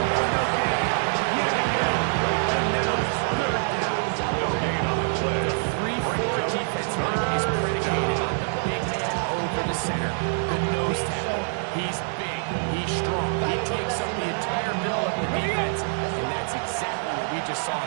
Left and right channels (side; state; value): left; silent; 56 dB below the other